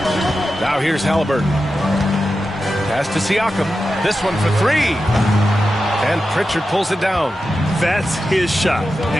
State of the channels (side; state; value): both; normal; correlation 0.91